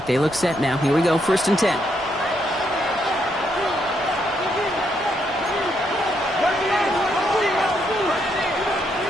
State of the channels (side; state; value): both; normal; correlation 0.76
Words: they look set now. Here we go, 1st and 10.